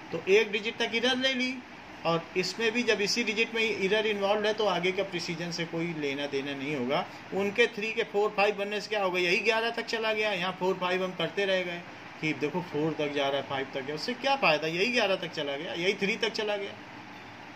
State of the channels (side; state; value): both; identical; correlation 1.00